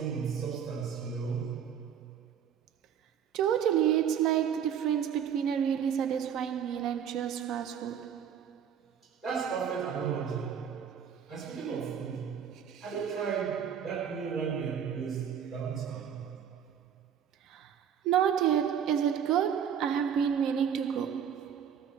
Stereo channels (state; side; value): quieter; left; 8.3 dB